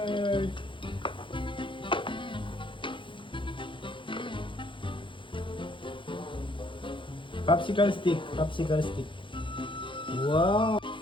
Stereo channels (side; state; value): right; late; 0.24 ms